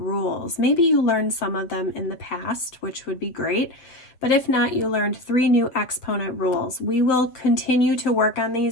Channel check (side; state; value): right; late; 7.4 ms